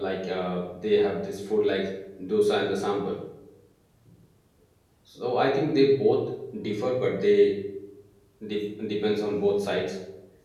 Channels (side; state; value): both; identical; correlation 1.00